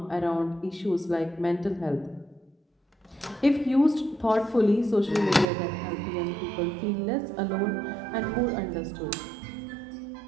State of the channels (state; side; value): drops out; left; at 5.5 s